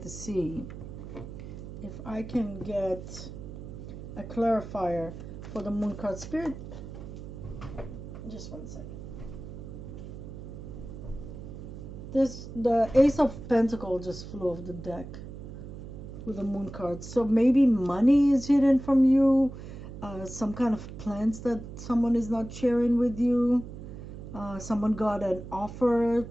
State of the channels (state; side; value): noise; right; hum, 11 dB below the sound